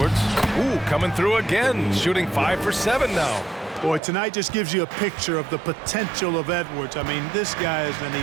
Ooh, coming through again, shooting 5 for 7 now. Boy, tonight just gives you a picture of the potential of Edwards. I mean, this guy is an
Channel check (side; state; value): left; drops out; at 4.0 s